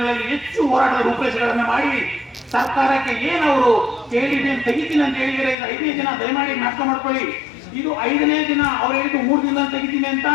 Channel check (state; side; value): drops out; right; at 5.6 s